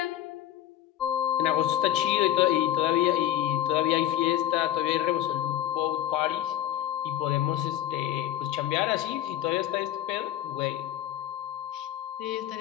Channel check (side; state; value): right; quieter; 11.9 dB